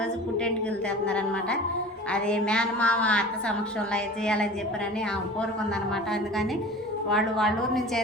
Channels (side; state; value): both; normal; correlation 0.38